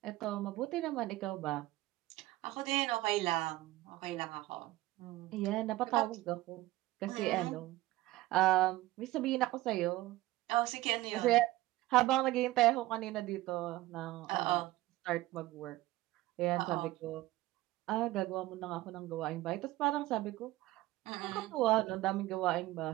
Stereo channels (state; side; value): quieter; left; 17.5 dB